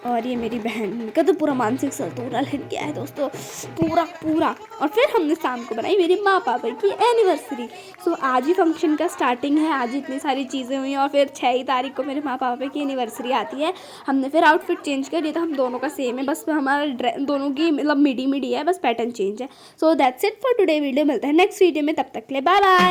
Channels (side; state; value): both; identical; correlation 1.00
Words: और ये मेरी बहन का तो पूरा मानसिक संतुलन हिल गया है दोस्तों, पूरा। और फिर हमने शाम को बनाई मेरे माँ पापा की एनिवर्सरी। सो आज ही फंक्शन का स्टार्टिंग है, आज इतनी सारी चीज़ें हुई। और फिर 6 तारीख को मेरे माँ पापा की एनिवर्सरी आती है। हमने फिर आउटफिट चेंज कर दिया था, हम दोनों का सेम है, बस हमारा दोनों की मतलब मिडी है, बस पैटर्न चेंज है। So that's it for today video. मिलता है नेक्स्ट वीडियो में, तब तक के लिए बाय